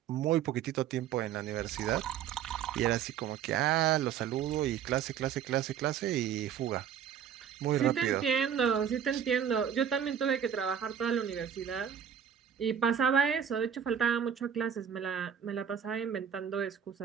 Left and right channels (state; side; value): quieter; left; 8.6 dB